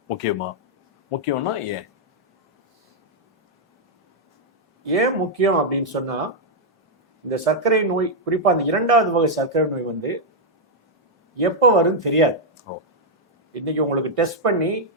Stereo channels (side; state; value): both; normal; correlation -0.04